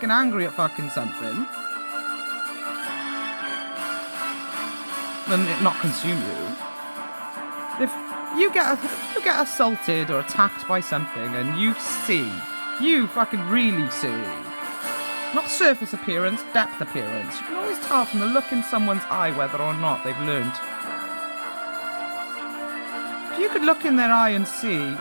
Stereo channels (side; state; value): both; inverted; correlation -1.00